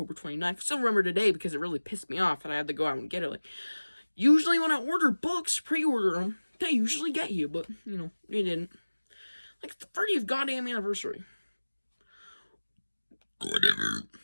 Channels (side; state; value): both; inverted; correlation -1.00